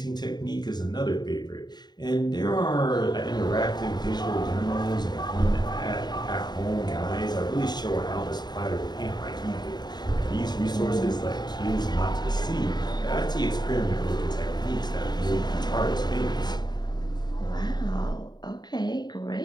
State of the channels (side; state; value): right; late; 0.20 ms